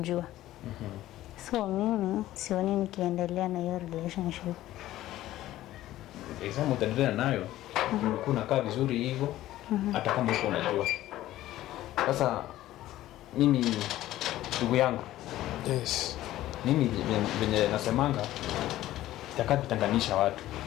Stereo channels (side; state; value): right; quieter; 14.7 dB